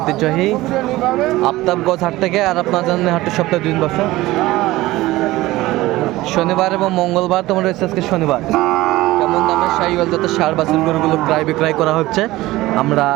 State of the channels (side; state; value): left; quieter; 18.0 dB